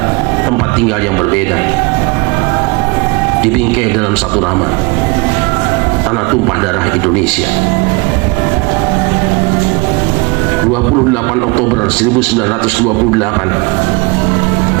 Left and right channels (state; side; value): quieter; left; 27.6 dB